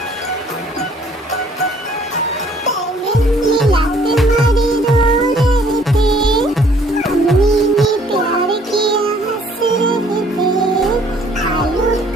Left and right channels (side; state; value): both; normal; correlation 0.59